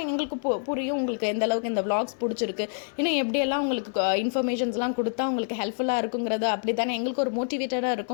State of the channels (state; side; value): silent; right; 58 dB below the other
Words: எங்களுக்கு புரியும் உங்களுக்கு எந்த அளவுக்கு இந்த விளாக்ஸ் பிடிச்சிருக்கு, இன்னும் எப்படியெல்லாம் உங்களுக்கு இன்ஃபர்மேஷன்ஸ்லாம் கொடுத்தா உங்களுக்கு ஹெல்ப்ஃபுல்லாக இருக்குங்கிறது அப்படி தானே எங்களுக்கு ஒரு மோட்டிவேட்டடாக